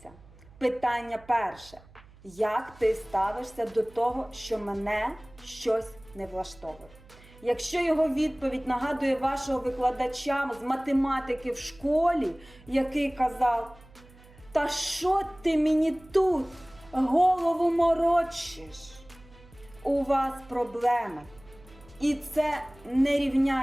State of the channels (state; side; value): noise; right; hum, 24 dB below the sound